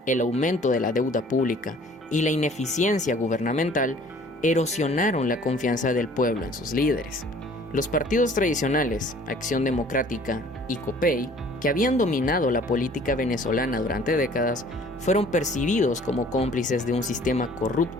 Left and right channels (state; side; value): normal; both; correlation 0.52